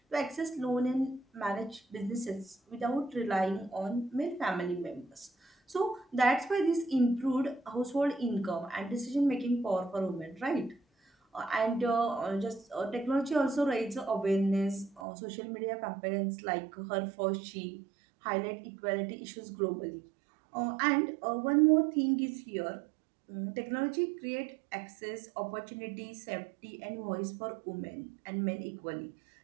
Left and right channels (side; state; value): left; drops out; at 15.0 s